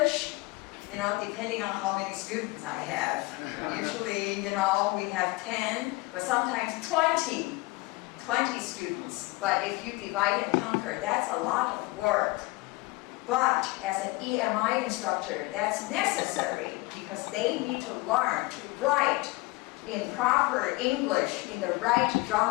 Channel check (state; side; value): quieter; right; 22.9 dB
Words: depending on how many students I have. Usually, we have 10, but sometimes 20 students. But if you divide and conquer, that's a lot of work. But as an EMI instructor, that's necessary because they need to learn to write in proper English in the right